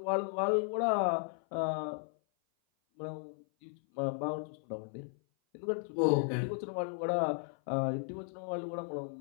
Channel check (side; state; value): right; silent; 54 dB below the other